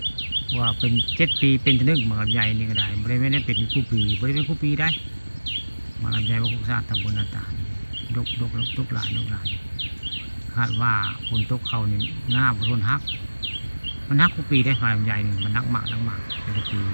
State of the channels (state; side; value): inverted; both; correlation -1.00